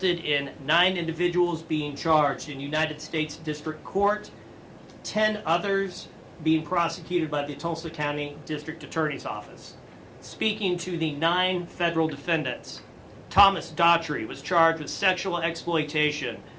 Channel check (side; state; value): both; identical; correlation 1.00